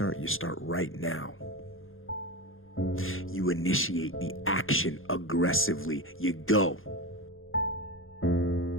You start right now. You initiate the action aggressively. You go.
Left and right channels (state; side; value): late; right; 0.60 ms